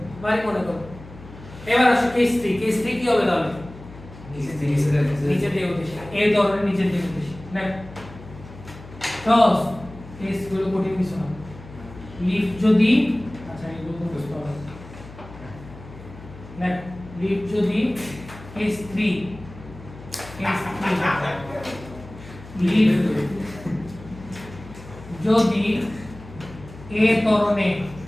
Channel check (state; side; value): noise; left; hum, 17 dB below the sound